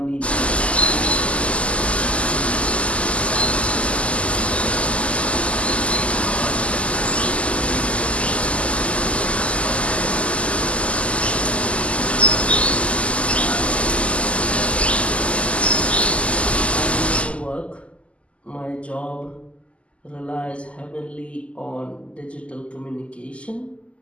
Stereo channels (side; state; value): right; late; 0.059 ms